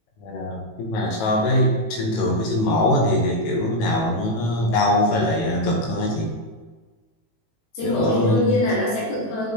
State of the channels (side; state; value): right; late; 18 ms